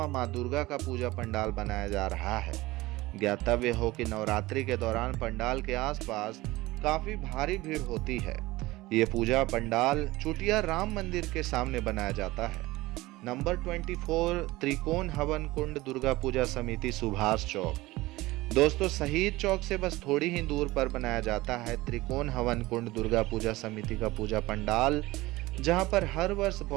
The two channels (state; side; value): quieter; left; 19.3 dB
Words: माँ दुर्गा का पूजा पंडाल बनाया जा रहा है। ज्ञातव्य हो कि नवरात्रि के दौरान पंडाल के आसपास काफी भारी भीड़ होती है। ये पूजा पंडाल चुटिया राम मंदिर के सामने बनाया जाता है। नंबर 24, त्रिकोण हवन कुंड दुर्गा पूजा समिति सुभाष चौक। दोस्तों, शहीद चौक से बस थोड़ी ही दूर पर बनाया जाता है त्रिकोण हवन कुंड दुर्गा पूजा समिति का पूजा पंडाल, जहां पर हर वर्ष